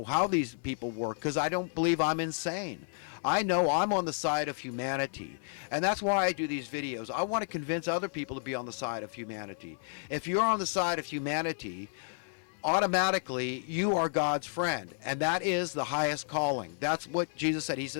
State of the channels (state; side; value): silent; right; 57 dB below the other